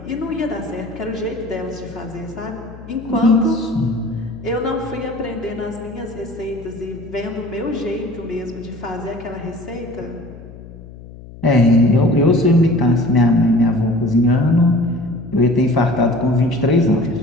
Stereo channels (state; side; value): noise; left; hum, 17 dB below the sound